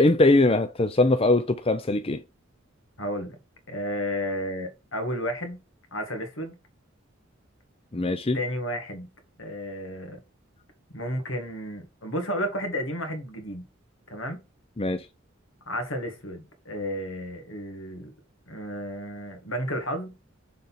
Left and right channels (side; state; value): both; normal; correlation 0.46